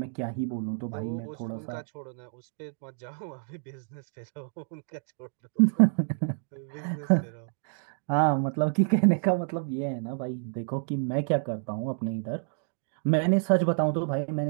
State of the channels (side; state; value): left; silent; digital silence